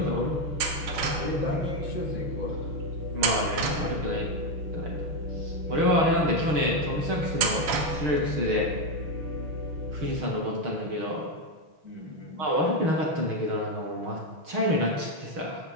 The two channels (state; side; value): late; left; 6.5 ms